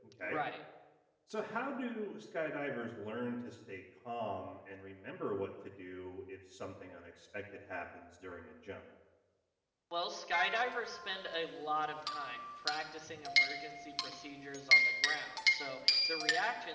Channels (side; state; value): both; identical; correlation 1.00